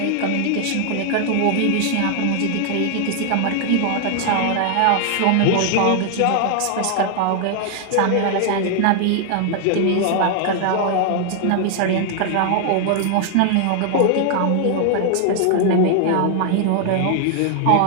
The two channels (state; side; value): different; both; correlation 0.00